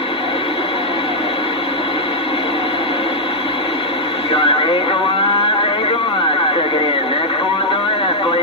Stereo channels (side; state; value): both; normal; correlation -0.04